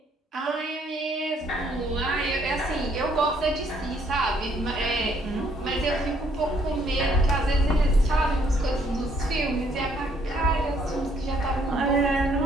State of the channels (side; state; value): both; normal; correlation 0.67